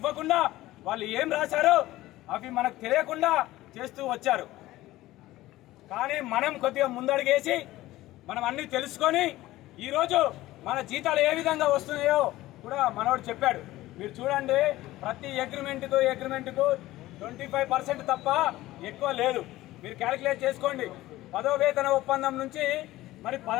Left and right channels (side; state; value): right; quieter; 16.7 dB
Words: వాళ్ళు ఏం రాశారో అవి మనకు తెలియకుండా చేస్తూ వచ్చారు. కానీ మనం కొద్దిగా ముందడుగేసి మనం అన్నీ తెలుసుకొని ఈరోజు మన జీతాలు ఏ విధంగా వస్తున్నాయో కూడా మనోడు చెప్పాడు. మీరు చూడండి, ప్రతి అగ్రిమెంట్కు 25% తప్ప ఎక్కువ లేదు. మీరు క్యాలిక్యులేట్ చేసుకోండి. 10వ వేతన ఒప్పందం నుంచి మరి